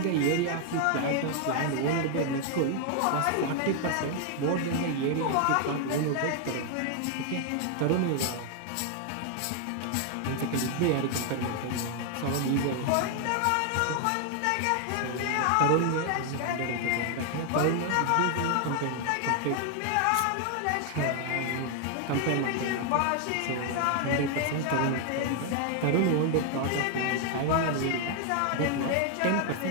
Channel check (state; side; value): different; both; correlation 0.00